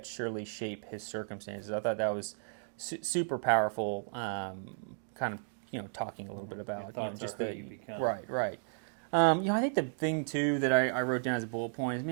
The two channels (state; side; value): silent; left; digital silence